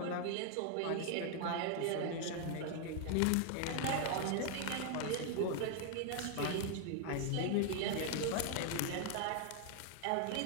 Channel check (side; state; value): both; different; correlation 0.00